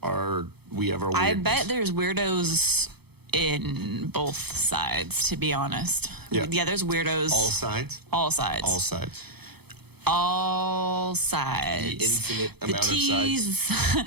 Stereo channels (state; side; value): late; left; 0.97 ms